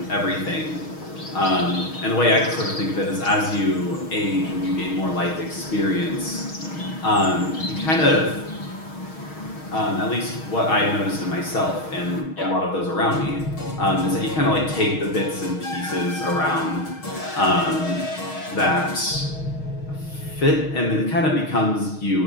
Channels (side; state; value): right; late; 6.4 ms